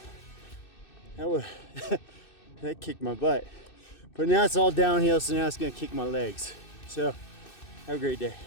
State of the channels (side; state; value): right; late; 2.6 ms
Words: kicked my butt. But now it's all downhill, so now it's gonna kick my legs. So have a great day.